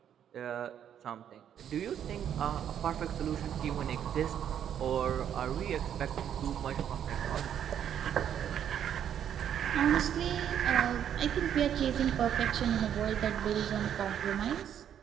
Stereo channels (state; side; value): quieter; left; 9.4 dB